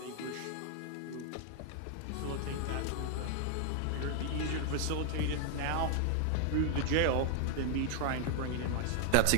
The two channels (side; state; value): both; different; correlation 0.00